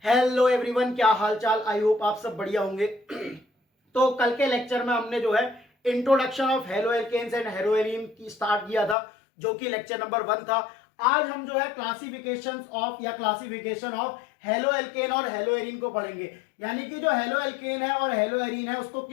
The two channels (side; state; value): right; drops out; at 9.0 s